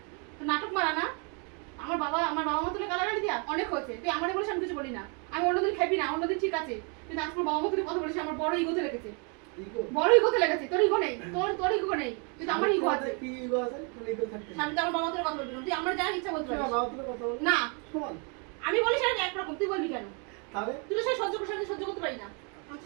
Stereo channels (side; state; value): left; quieter; 36.2 dB